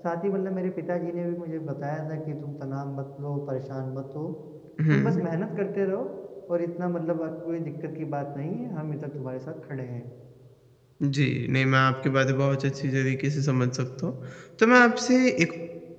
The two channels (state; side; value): identical; both; correlation 1.00